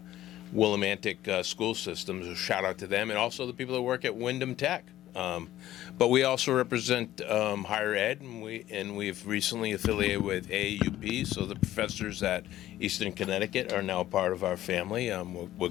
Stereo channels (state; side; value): quieter; right; 13.8 dB